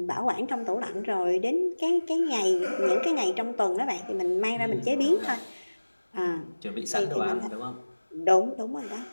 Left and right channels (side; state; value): both; inverted; correlation -1.00